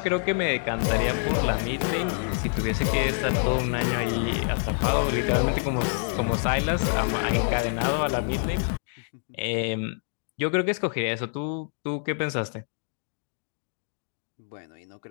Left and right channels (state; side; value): silent; right; digital silence